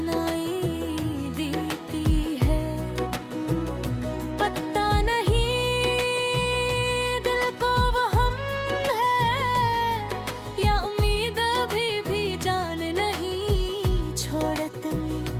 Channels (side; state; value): both; identical; correlation 1.00